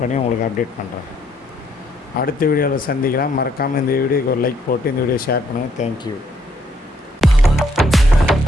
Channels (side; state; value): both; normal; correlation 0.69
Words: பண்ணி உங்களுக்கு அப்டேட் பண்ணுறேன். அடுத்த வீடியோவில் சந்திக்கலாம். மறக்காமல் இந்த வீடியோக்கு ஒரு லைக் போட்டு இந்த வீடியோ ஷேர் பண்ணுங்கள். தேங்க்யூ.